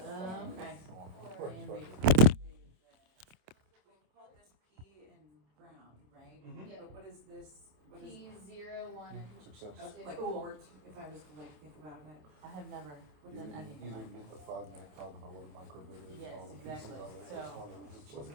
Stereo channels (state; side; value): late; left; 27 ms